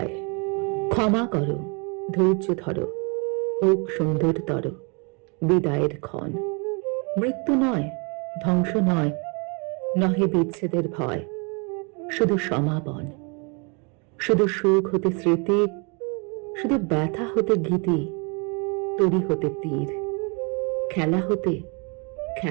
ক্ষমা করো, ধৈর্য ধরো, হোক সুন্দরতর বিদায়ের ক্ষণ। মৃত্যু নয়, ধ্বংস নয়, নহে বিচ্ছেদের ভয়, শুধু সমাপন। শুধু সুখ হতে স্মৃতি, শুধু ব্যথা হতে গীতি, তরি হতে তীর, খেলা হতে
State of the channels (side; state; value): left; quieter; 33.3 dB